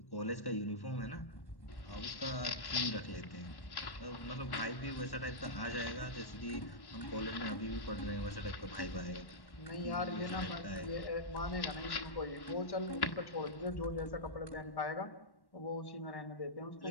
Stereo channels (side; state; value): right; late; 1.1 ms